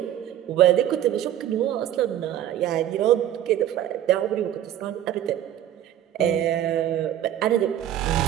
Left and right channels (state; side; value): quieter; left; 11.6 dB